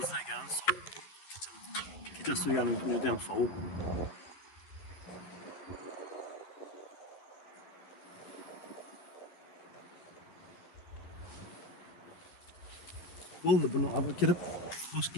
sovuq. Kecha suyganim juda ham sovuq. Bo'ldi, buni olib kirib, boshqa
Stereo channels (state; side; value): late; right; 11 ms